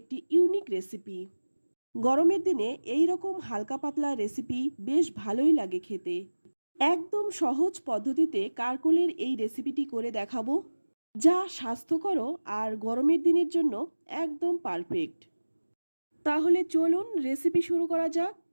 ইউনিক রেসিপি। গরমের দিনে এই রকম হালকা পাতলা রেসিপি বেশ ভালোই লাগে খেতে। একদম সহজ পদ্ধতিতে কাকরোলের এই রেসিপিটি করে দেখাবো, যা স্বাস্থ্যকর আর গরমের দিনের জন্য একদম পারফেক্ট। তাহলে চলুন রেসিপি শুরু করা যাক।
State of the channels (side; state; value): both; inverted; correlation -1.00